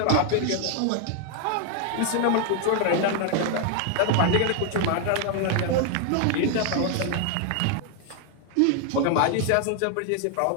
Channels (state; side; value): different; both; correlation 0.00